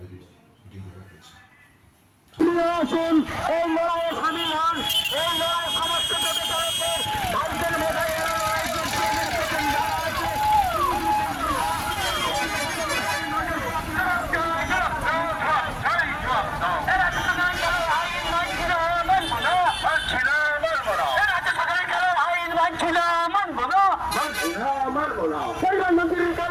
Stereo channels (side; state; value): both; identical; correlation 1.00